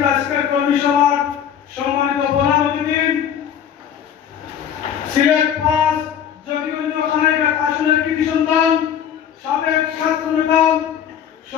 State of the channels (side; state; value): right; quieter; 9.0 dB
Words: আজকের কর্মী সভার সম্মানিত প্রধান অতিথি সিলেট ৫ জকিগঞ্জ খানাইঘাট আসনের কৃতি সন্তান সাবেক ছাত্র নেতা